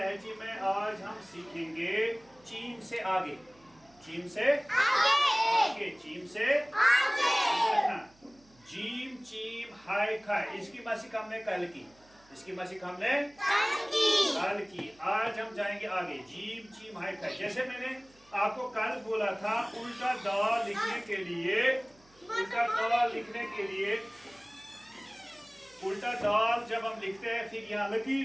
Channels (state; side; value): noise; right; hum, 29 dB below the sound